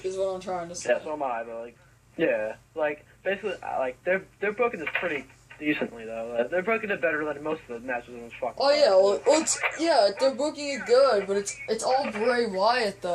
is what I'm trying to say. Yeah, so am I. But like basically, like they're booking this pretty decently though. They're booking it better than most of the matches in this fucking. Oh yeah, well, they're booking it good, but it's all Bray Wyatt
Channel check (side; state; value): both; identical; correlation 1.00